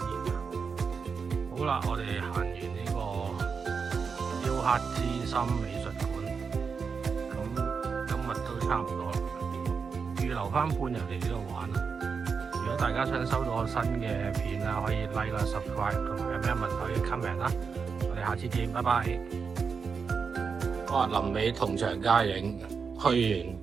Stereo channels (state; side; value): quieter; left; 5.6 dB